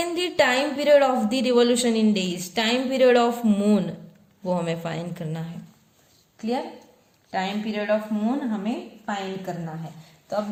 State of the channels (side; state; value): both; identical; correlation 1.00